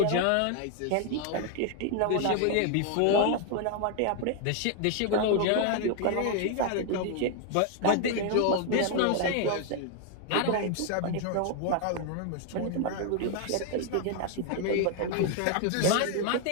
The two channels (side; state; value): both; different; correlation 0.01